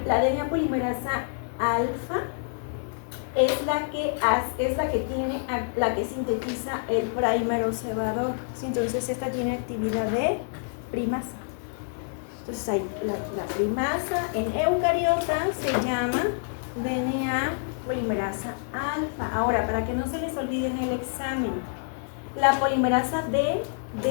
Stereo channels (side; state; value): right; silent; digital silence